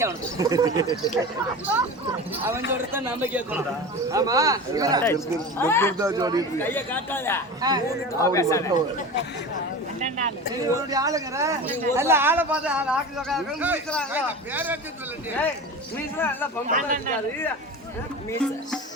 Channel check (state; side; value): normal; both; correlation 0.31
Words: அவனுக்கு அவன் சொல்றத நம்ம கேட்கணும் ஆமா கைய காட்டாத ஆளுங்கிற நல்ல ஆளை பார்த்து ஆள் ஆக்கி